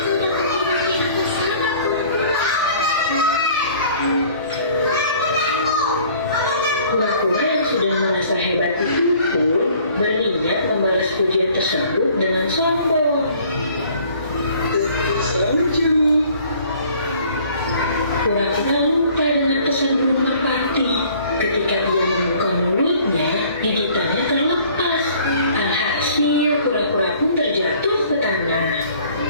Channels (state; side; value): inverted; both; correlation -0.54